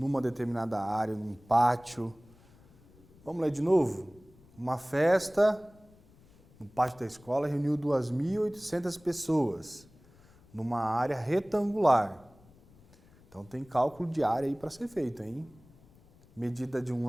determinada área, num pátio. Vamos ler de novo? Uma festa no pátio da escola reuniu 2.800 pessoas numa área retangular. Então tem cálculo de área aí para ser feito, hein? Medida de um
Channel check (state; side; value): noise; left; rumble, 27 dB below the sound